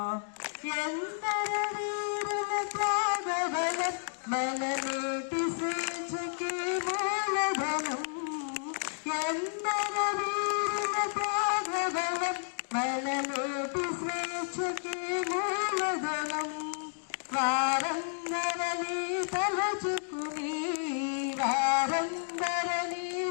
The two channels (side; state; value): right; silent; digital silence